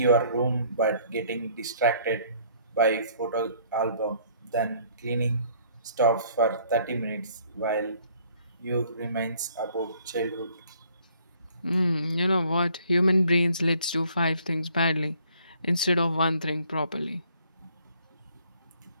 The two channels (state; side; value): inverted; both; correlation -0.61